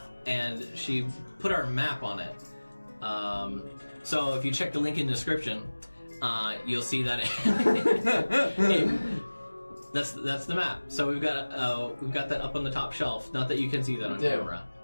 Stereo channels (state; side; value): inverted; both; correlation -1.00